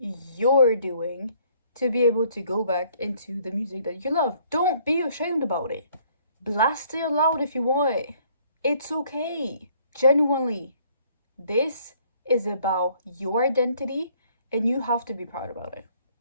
doing to be able to go back into the music that you love. Don't be ashamed about it. Blast it loud if you want. It's okay. Genuinely. This is about your identity and you have to be proud about it.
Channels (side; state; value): both; inverted; correlation -0.62